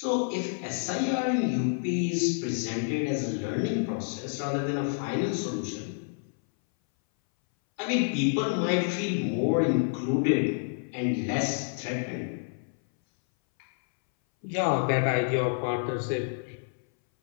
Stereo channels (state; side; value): silent; right; 59 dB below the other